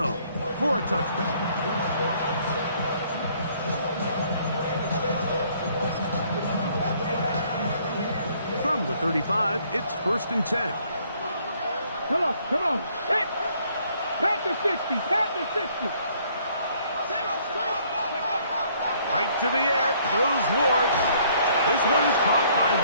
for a touchback. From the 35, it's 1st and 10. Come on. Hit! Panther 60, Panther 60. Right to the air goes Ward. This one is caught by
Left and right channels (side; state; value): both; inverted; correlation -0.63